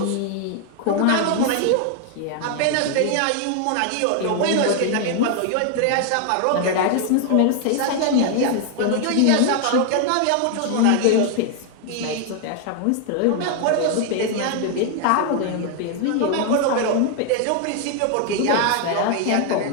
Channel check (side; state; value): both; different; correlation 0.00